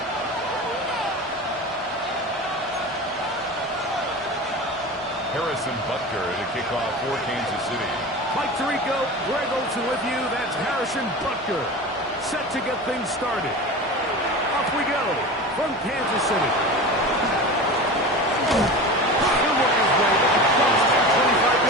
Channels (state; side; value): normal; both; correlation 0.31